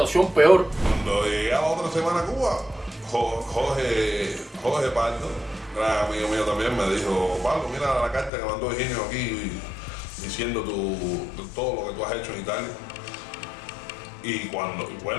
peor. Cuando llegué a la otra semana a Cuba, Jorge Pardo, gran amigo mío también, me dijo, Pablo, mira la carta que mandó Higinio aquí diciendo todo lo que tú has hecho en Italia. Y bueno,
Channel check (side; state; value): right; drops out; at 8.3 s